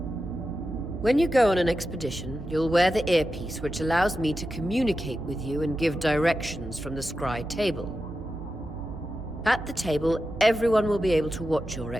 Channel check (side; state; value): right; noise; hum, 13 dB below the sound